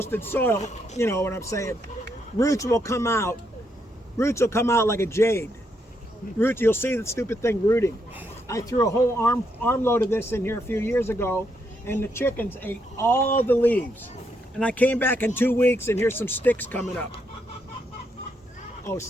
soil, you know what I'm saying, roots will come out. Roots will come out like a jade. Roots, you'll see the stupid thing rooting. I threw a whole armload of this in here a few years ago, and the chickens ate all the leaves. And I came back in 2 weeks, and here's some sticks coming up. Oh,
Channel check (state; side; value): normal; both; correlation 0.78